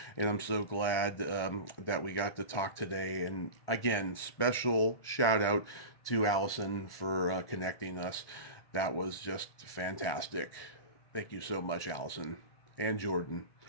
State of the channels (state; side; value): late; right; 1.4 ms